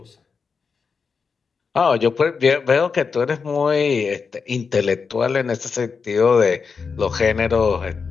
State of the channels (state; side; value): quieter; right; 5.4 dB